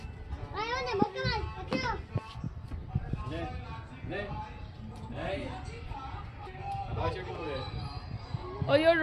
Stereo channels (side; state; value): both; identical; correlation 1.00